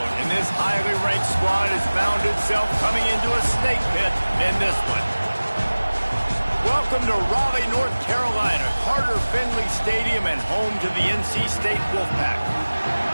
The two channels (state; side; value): inverted; both; correlation -1.00